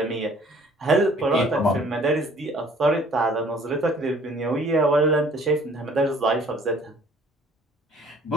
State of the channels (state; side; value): normal; both; correlation 0.55